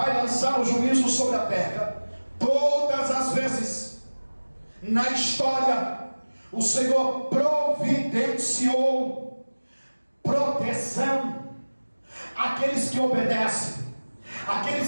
lançar o juízo sobre a terra, todas as vezes na história o Senhor providenciou proteção àqueles que obedecem,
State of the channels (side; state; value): both; inverted; correlation -1.00